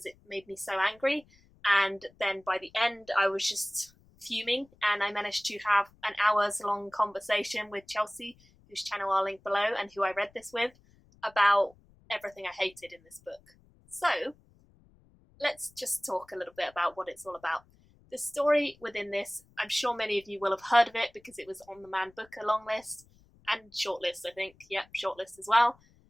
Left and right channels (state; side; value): noise; left; rumble, 29 dB below the sound